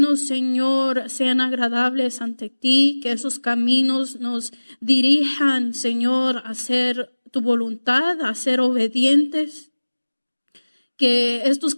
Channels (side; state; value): both; inverted; correlation -1.00